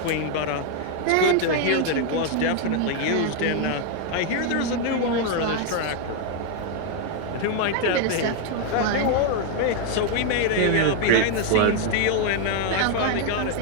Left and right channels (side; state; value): both; different; correlation 0.01